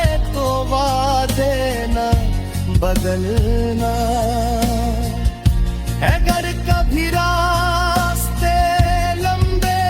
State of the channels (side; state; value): both; identical; correlation 1.00